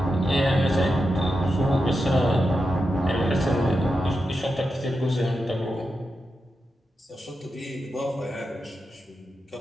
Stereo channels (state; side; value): normal; both; correlation 0.88